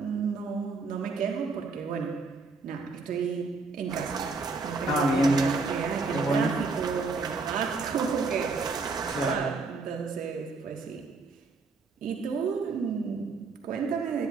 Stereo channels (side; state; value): left; quieter; 3.9 dB